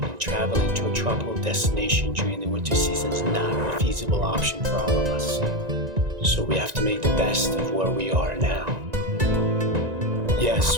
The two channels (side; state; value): left; late; 1.9 ms